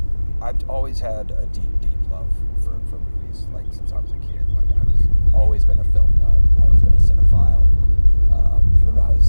always had a deep love for movies, since I was a kid. I've always been a film nut, always been a cinephile. Even when I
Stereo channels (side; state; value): both; inverted; correlation -1.00